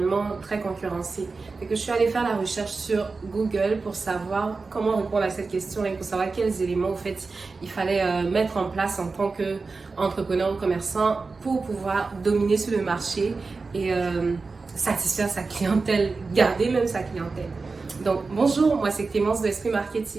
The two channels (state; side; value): quieter; left; 4.1 dB